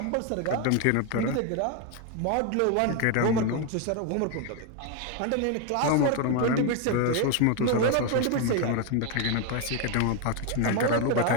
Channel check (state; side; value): different; both; correlation 0.01